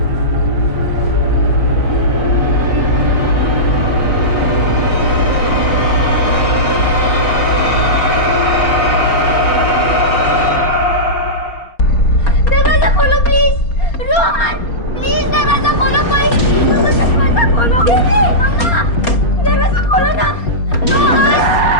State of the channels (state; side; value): late; right; 4.3 ms